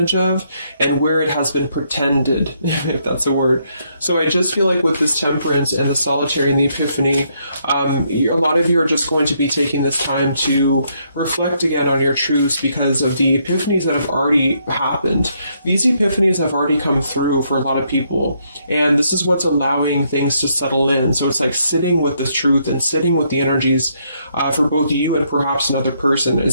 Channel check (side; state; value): both; inverted; correlation -0.73